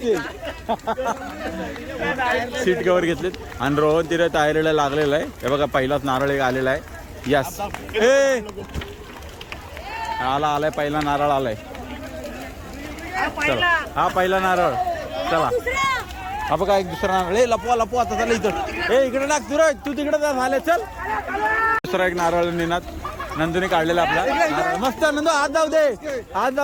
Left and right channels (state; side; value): identical; both; correlation 1.00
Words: सीट कव्हर घेतलेत आणि रोहन तिथे तयारीला लागलेला आहे. हे बघा पहिलाच नारळ एक आलेला आहे. यस आलाय पहिला नारळ आलाय. चला हा पहिला नारळ. चला हा बघा एक दुसरा नारळ. लपवा आता चला इथं. इकडे टाक तू तिकडे झाले. चल दुसरा एक नारळ निनात नंदूने काढलेला आपला नारळ. मस्त नंदू हात जाऊ